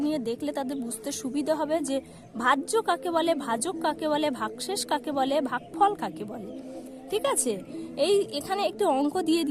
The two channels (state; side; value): identical; both; correlation 1.00